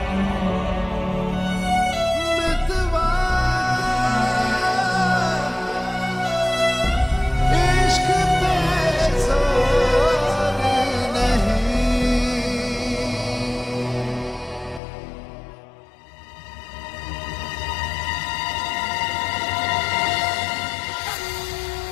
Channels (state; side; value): drops out; right; at 14.8 s